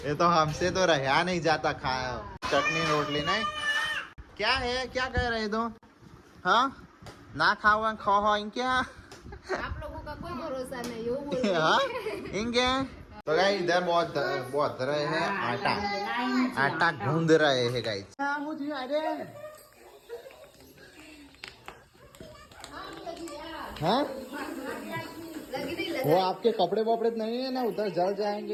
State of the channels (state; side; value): identical; both; correlation 1.00